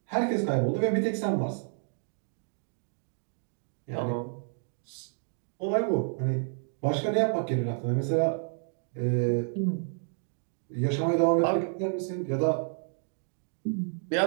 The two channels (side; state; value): left; silent; 58 dB below the other